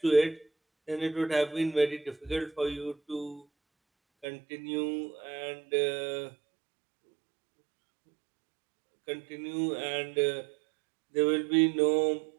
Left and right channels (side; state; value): left; drops out; at 4.2 s